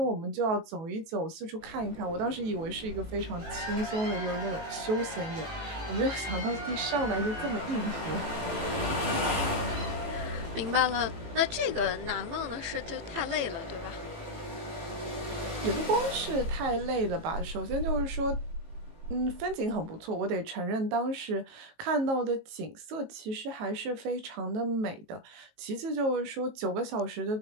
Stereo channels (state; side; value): late; left; 18 ms